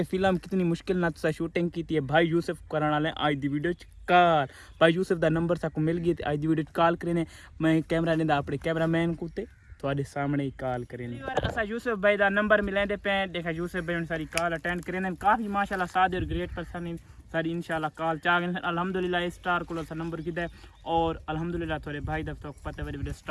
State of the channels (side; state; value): both; identical; correlation 1.00